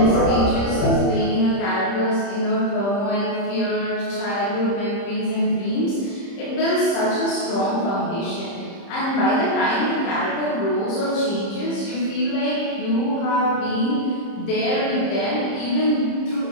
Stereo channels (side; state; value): right; late; 30 ms